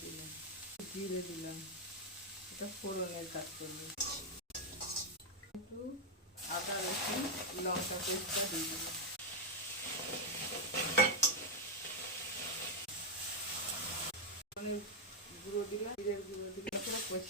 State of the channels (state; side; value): normal; both; correlation 0.00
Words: দিলাম, জিরে দিলাম, এটা ফোড়নের কাজ করবো। একটু আদা রসুন লঙ্কা পেস্টটা দিয়ে দিলাম, গুঁড়ো দিলাম, জিরের গুঁড়ো দিলাম,